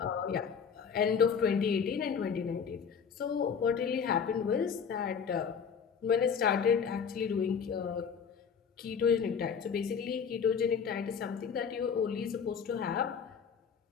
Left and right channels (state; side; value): quieter; right; 6.7 dB